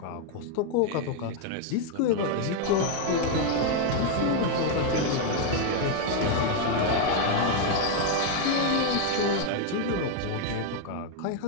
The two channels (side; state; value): both; different; correlation 0.01